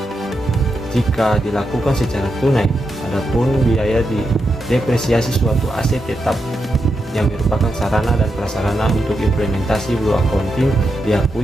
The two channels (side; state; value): both; normal; correlation 0.85